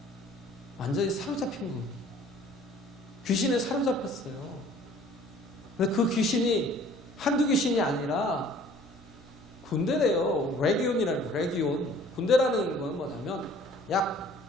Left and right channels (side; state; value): both; normal; correlation 0.52